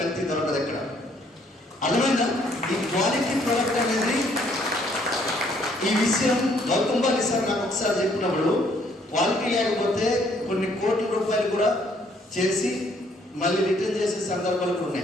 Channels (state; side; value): normal; both; correlation 0.66